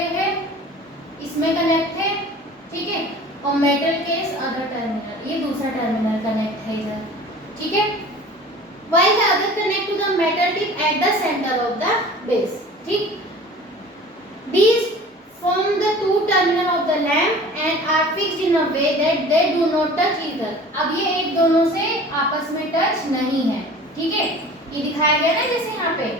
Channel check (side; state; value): both; normal; correlation 0.43